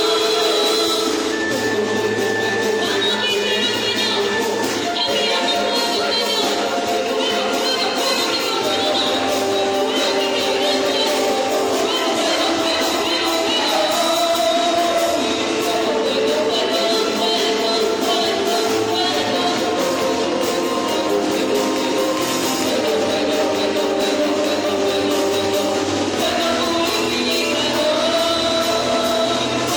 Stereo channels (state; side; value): identical; both; correlation 1.00